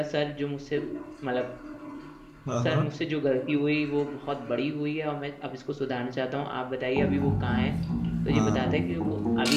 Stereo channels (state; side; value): identical; both; correlation 1.00